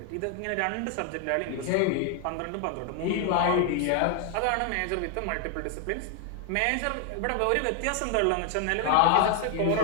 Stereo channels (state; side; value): different; both; correlation 0.00